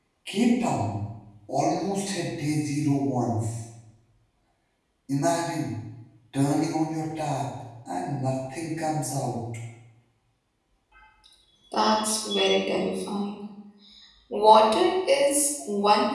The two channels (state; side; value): identical; both; correlation 1.00